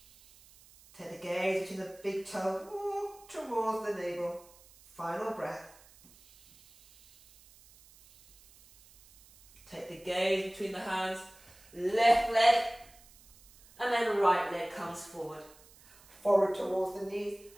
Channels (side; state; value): right; noise; hiss, 25 dB below the sound